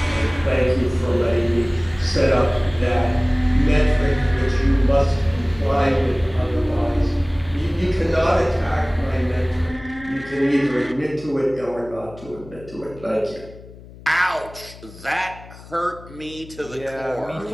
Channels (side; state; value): left; noise; hum, 19 dB below the sound